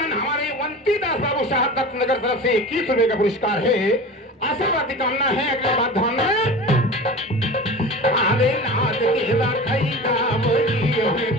हमारे वंती दास बाबू साहब दत्तनगर तरफ से 21 रुपए का पुरस्कार है आशीर्वाद की कामना है अगले बात ध्यान में अरे नाच के रखैया वही है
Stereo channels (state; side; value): normal; both; correlation 0.34